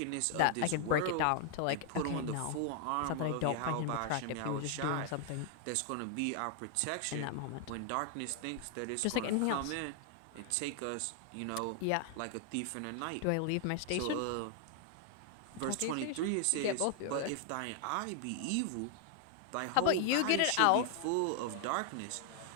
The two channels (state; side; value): different; both; correlation 0.00